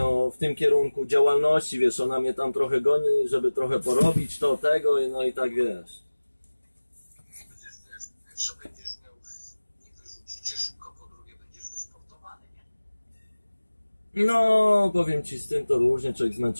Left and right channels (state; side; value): inverted; both; correlation -1.00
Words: w tym kierunku działalności, wiesz, ona mnie tam trochę goni, żeby trochę porobić to, tego, no i tak, wiesz. Pierwsze będziesz miał, nie wyrzucicie szybko, po drugie będziesz wysportowany, nie? No, powiem ci, z tym to różnie, człowiek